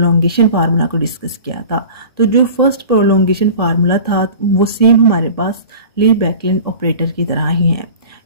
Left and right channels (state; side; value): inverted; both; correlation -0.40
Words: फार्मूला को डिस्कस किया था। तो जो फर्स्ट प्रोलोंगेशन फार्मूला था वो सेम हमारे पास ली बैकलैंड ऑपरेटर की तरह ही है,